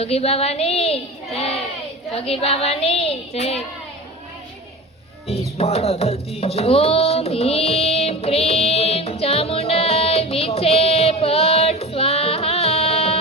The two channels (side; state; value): both; normal; correlation 0.32